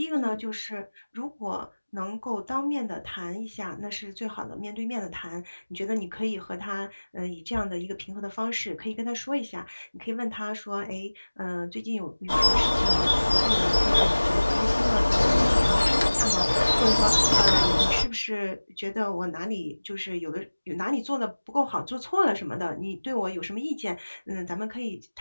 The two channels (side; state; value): both; inverted; correlation -1.00